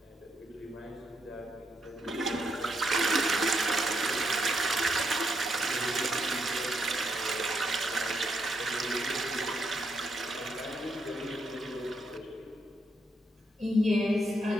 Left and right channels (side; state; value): both; normal; correlation 0.78